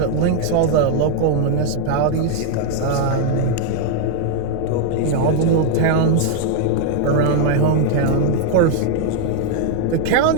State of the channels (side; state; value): both; different; correlation 0.00